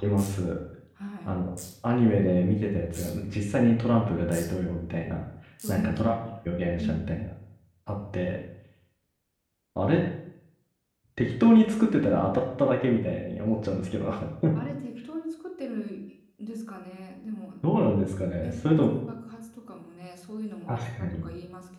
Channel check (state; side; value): identical; both; correlation 1.00